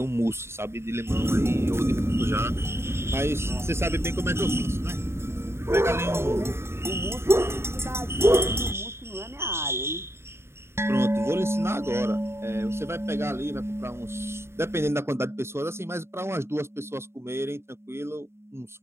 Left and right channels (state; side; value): late; left; 0.12 ms